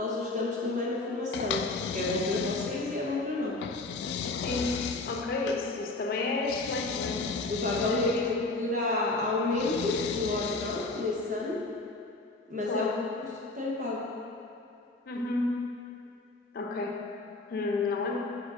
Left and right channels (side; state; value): right; quieter; 3.1 dB